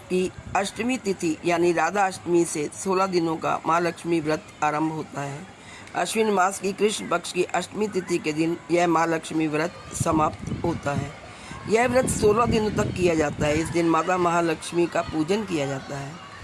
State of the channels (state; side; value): identical; both; correlation 1.00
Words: की अष्टमी तिथि यानी राधा अष्टमी से 16 दिनों का महालक्ष्मी व्रत आरंभ होता है। अश्विन मास की कृष्ण पक्ष की अष्टमी तिथि के दिन यह महालक्ष्मी व्रत समाप्त होता है। यह व्रत 16 दिनों तक किया जाता है। इस दिन माता महालक्ष्मी का पूजन किया जाता है